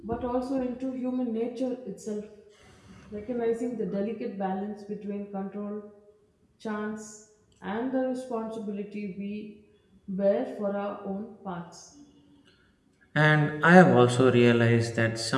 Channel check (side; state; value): both; identical; correlation 1.00